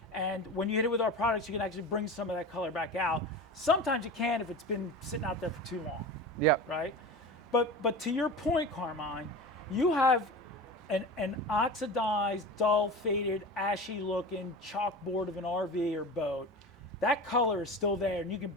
and when you hit it with our products, you can actually bring some of that color back out. Sometimes you can if it's been sitting out there for too long. Yep. Right? But to your point, Carmine, you have an oxidized, dull, faded, ashy looking chalkboard of an RV or boat. That color is still there, and you can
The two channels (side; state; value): both; normal; correlation 0.31